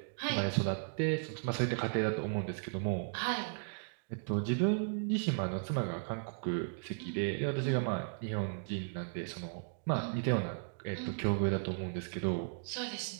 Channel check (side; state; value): left; silent; digital silence